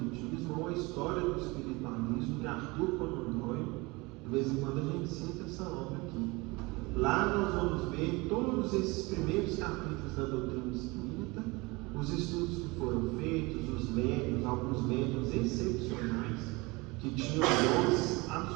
ou A História do Espiritualismo, de Arthur Conan Doyle. De vez em quando a gente cita essa obra aqui. Lá nós vamos ver todos esses primeiros capítulos da doutrina espírita, os estudos que foram feitos, os médiuns, alguns médiuns excepcionais, que tinham dons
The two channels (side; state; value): left; quieter; 24.5 dB